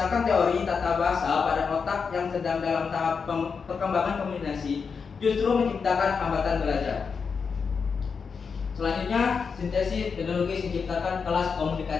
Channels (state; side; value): quieter; right; 5.6 dB